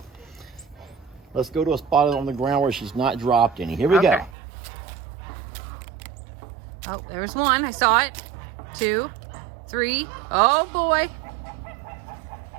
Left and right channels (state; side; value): drops out; left; at 4.3 s